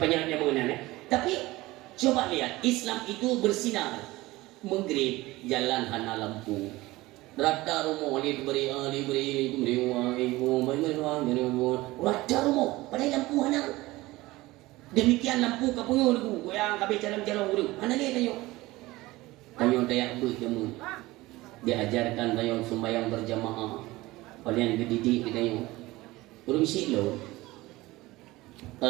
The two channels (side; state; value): left; quieter; 19.4 dB